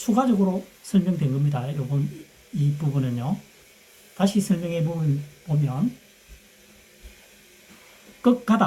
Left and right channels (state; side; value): identical; both; correlation 1.00